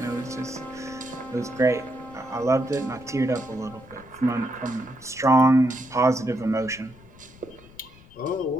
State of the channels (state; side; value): noise; left; rumble, 22 dB below the sound